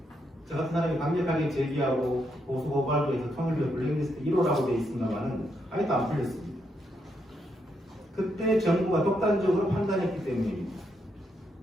저 같은 사람이 강력하게 제기하고 보수 고발도 해서 통일부 블랙리스트 1호라고 되어 있습니다만은 아직도 안 풀렸습니다. 그때 정부가 독단적으로 판단했기 때문입니다.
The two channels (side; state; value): both; normal; correlation 0.79